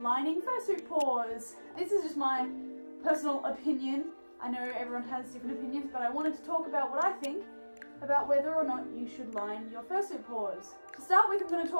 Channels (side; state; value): both; inverted; correlation -1.00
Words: fursuit paws. This is just my personal opinion. I know everyone has different opinions, but I wanted to talk about what I think about whether or not you should line your fursuit paws. To start with, I'm going to